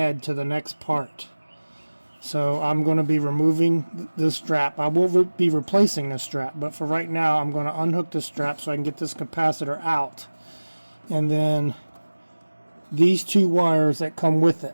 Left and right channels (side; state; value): both; inverted; correlation -1.00